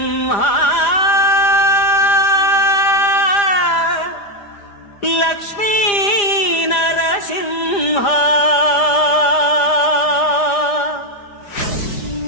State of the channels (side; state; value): right; late; 4.9 ms